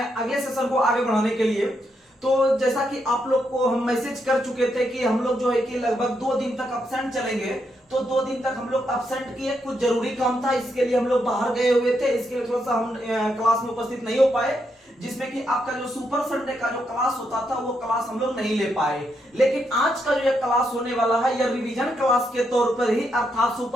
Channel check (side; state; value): both; normal; correlation 0.80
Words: सेशन को आगे बढ़ाने के लिए। तो जैसा कि आप लोग को हम मैसेज कर चुके थे कि हम लोग जो है कि लगभग 2 दिन तक अब्सेंट चलेंगे, तो 2 दिन तक हम लोग अब्सेंट किए। कुछ जरूरी काम था, इसके लिए हम लोग बाहर गए हुए थे, इसके लिए थोड़ा सा हम क्लास में उपस्थित नहीं हो पाए, जिसमें कि आपका जो सुपर संडे का जो क्लास होता था वो क्लास हम लोग नहीं ले पाए। लेकिन आज का जो ये क्लास होने वाला है यह रिवीजन क्लास के तौर पर ही, अर्थात